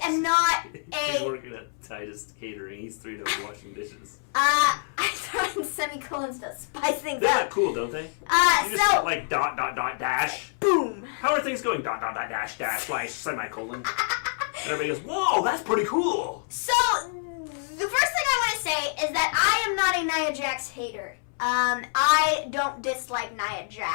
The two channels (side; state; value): right; silent; 60 dB below the other